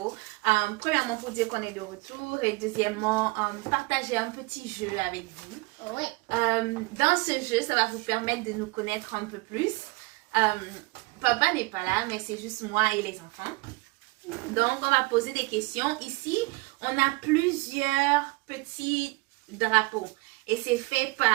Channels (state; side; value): quieter; left; 24.8 dB